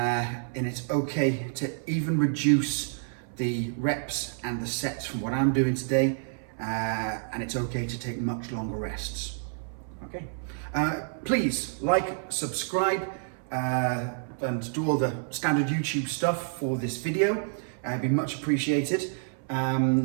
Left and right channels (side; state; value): left; silent; 59 dB below the other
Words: it's okay to even reduce the reps and the sets from what I'm doing today, and it's okay to take much longer rests. Okay. Please like, subscribe, and do all the standard YouTube stuff for this video. It'd be much appreciated.